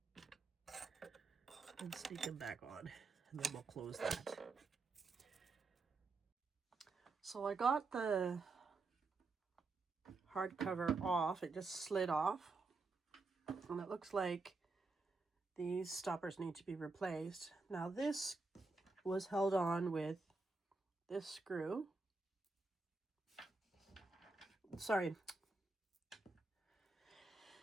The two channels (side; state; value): left; quieter; 3.7 dB